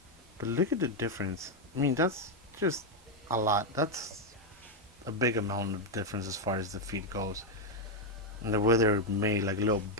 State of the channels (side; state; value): both; normal; correlation 0.01